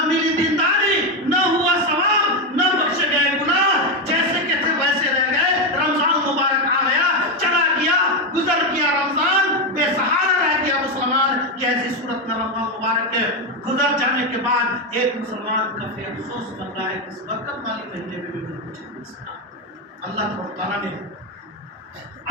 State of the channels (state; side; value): normal; both; correlation 0.09